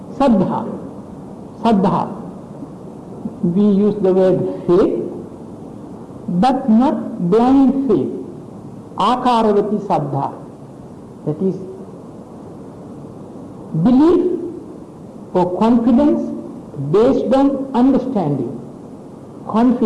Saddha. Saddha. We use the word faith, but not blind faith. Akaravati Saddha. That is belief or confidence based on understanding.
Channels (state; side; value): identical; both; correlation 1.00